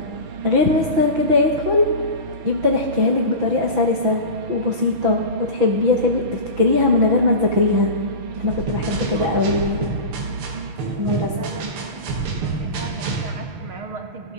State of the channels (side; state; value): left; late; 6.1 ms